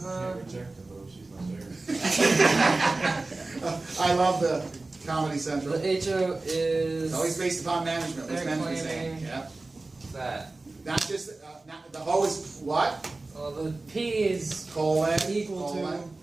Can't reject her though. She's not there. I love the Comedy Central. The HO is It's always based upon management. What's They're management saying? claiming- Yeah. that. Not just the hoe is what? Well, the P is Colon. Equal to- colon.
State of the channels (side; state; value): left; quieter; 3.2 dB